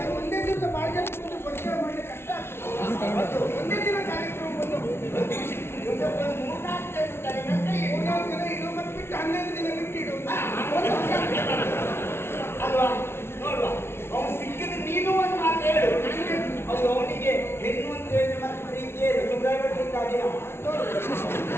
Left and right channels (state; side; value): late; right; 0.12 ms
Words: ಒಂದೇ ದಿವಸ ಭಾಳ ಜನ ಕೂತು ಪರಿಚಯ ಮಾಡಲಿಕ್ಕೆ ಕಷ್ಟ ಆಗ್ತದೆ. ಒಂದೇ ದಿನ ಕಾರ್ಯಕ್ರಮ ಬಂದು 3-4 ಜನ ಇಡೋ ಮತ್ತೆ ಬಿಟ್ಟು 11 ದಿನ ಬಿಟ್ಟು ಇಡೋದು. ಅಲ್ವಾ? ನೋಡುವ, ಅವನು ಸಿಕ್ಕಿದ್ರೆ ನೀನು ಒಂದು ಮಾತು ಹೇಳು. ಅದು ಅವನಿಗೆ ಹೆಣ್ಣು ಅಂತ ಹೇಳಿ ಮತ್ತೆ ಪ್ರೀತಿ ಸುಬ್ರಾಯ್